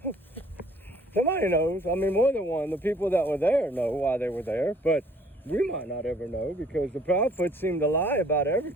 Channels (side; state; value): both; normal; correlation 0.58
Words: Somebody knows. More than one. The people that were there know why they were there, but we might not ever know, because the Proudfoots seem to lie about